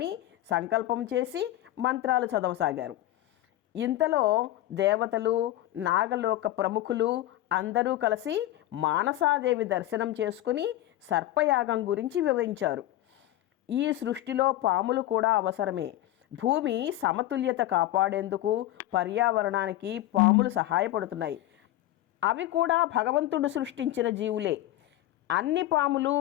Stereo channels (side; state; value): right; quieter; 14.4 dB